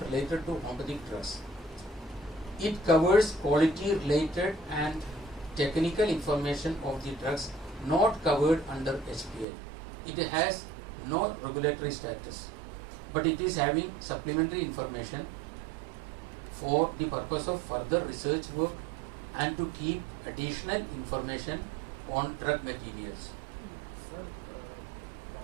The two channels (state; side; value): drops out; left; at 9.5 s